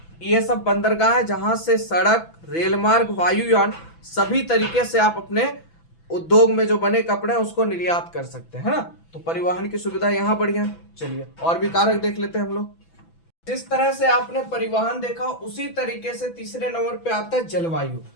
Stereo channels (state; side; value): late; right; 6.0 ms